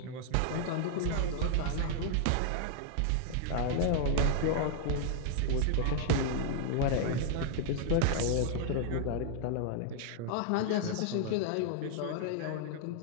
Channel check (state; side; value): different; both; correlation -0.01